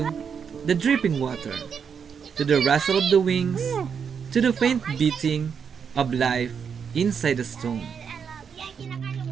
the dripping water, to the rustle of the wings, to the faint beating of life inside the stone. Yan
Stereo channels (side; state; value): left; quieter; 6.8 dB